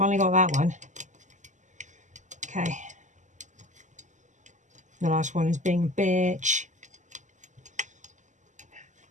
got that one. Okay. The last one is being a bitch.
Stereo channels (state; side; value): late; left; 0.35 ms